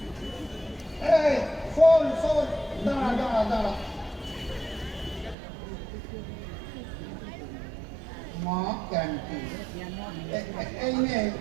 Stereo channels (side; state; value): left; drops out; at 5.4 s